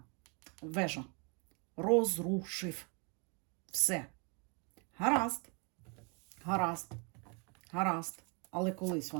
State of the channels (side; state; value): left; quieter; 34.3 dB